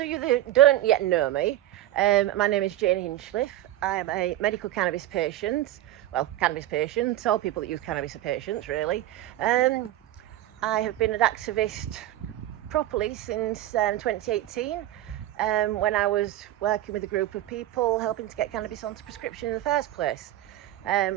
you that don't yet know me, my name is Jane Hinchliffe. I am a medical cannabis patient. Well, cannabis patient. All people that use cannabis are patients, really. I have been an activist properly since 2018. When I was working with a group of people helping to get cannabis onto prescription in the first place.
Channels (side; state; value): left; quieter; 14.1 dB